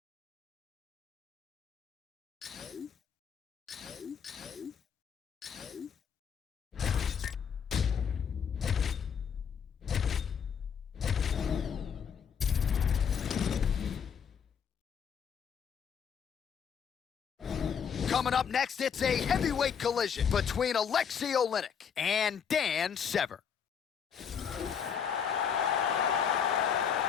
Coming up next, it's a heavyweight collision between Alexei Oleinik and Dan Severn.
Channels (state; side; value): quieter; right; 7.3 dB